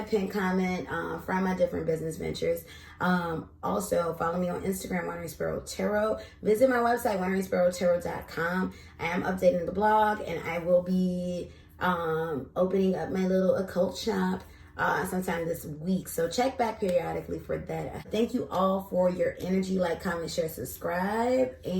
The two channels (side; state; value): both; identical; correlation 1.00